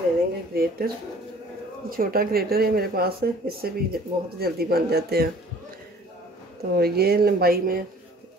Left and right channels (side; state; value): both; normal; correlation 0.52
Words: लेंगे ग्रेटर, छोटा ग्रेटर है मेरे पास, इससे भी बहुत जल्दी बन जाते हैं। तो ये लंबाई में